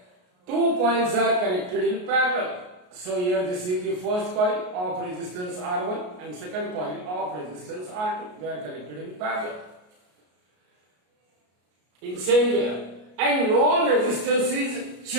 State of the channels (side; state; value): left; late; 33 ms